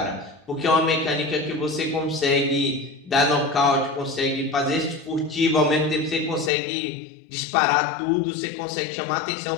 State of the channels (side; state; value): right; drops out; at 6.5 s